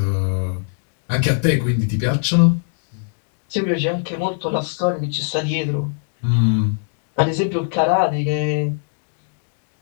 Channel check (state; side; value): silent; right; 62 dB below the other